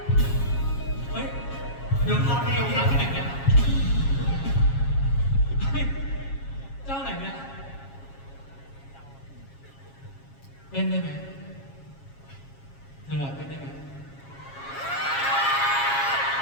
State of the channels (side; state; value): right; late; 7.3 ms